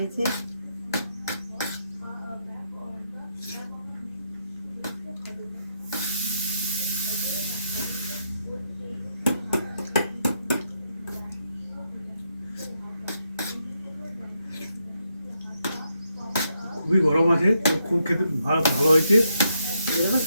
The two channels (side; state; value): both; inverted; correlation -0.81